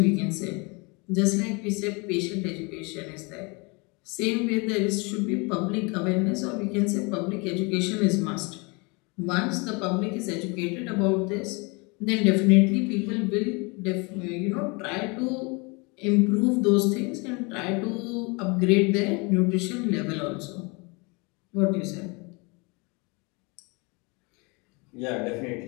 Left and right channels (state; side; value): quieter; right; 29.2 dB